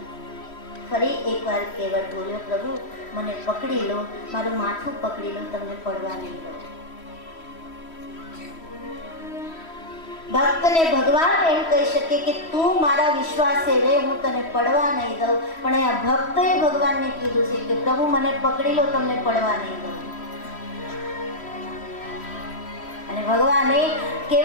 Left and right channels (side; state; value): right; late; 3.1 ms